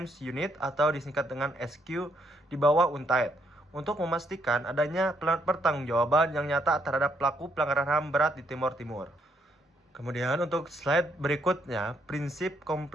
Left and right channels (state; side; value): normal; both; correlation 0.73